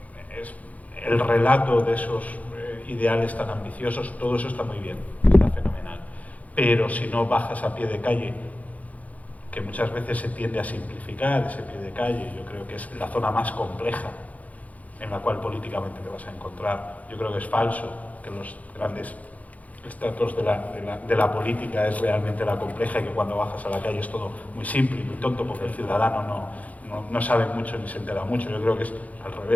el relato de esos ideales tan ambiciosos, todo eso está muy bien, está fenomenal. Pero si no bajas a pie de calle, que muchas veces se tiende a simplificar ese pie de calle, yo creo que es la zona más compleja en la cual políticamente te vas a encontrar. Yo creo que es falso que los grandes estratos de la política es realmente la compleja y que cuando bajas a la calle es todo muy simple y muy tonto porque el ciudadano no sabe mucho ni se entera mucho. Yo creo que es al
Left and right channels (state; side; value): late; right; 0.073 ms